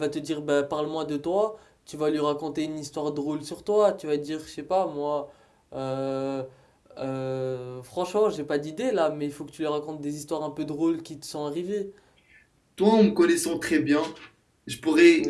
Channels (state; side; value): identical; both; correlation 1.00